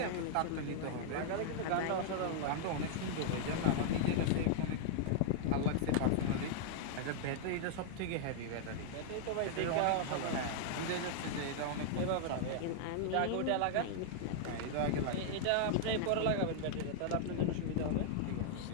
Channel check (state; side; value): different; both; correlation -0.01